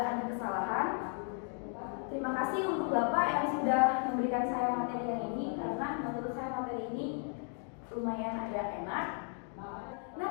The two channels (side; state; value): right; quieter; 38.9 dB